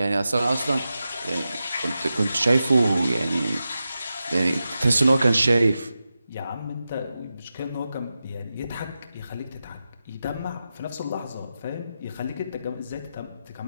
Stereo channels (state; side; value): inverted; both; correlation -0.91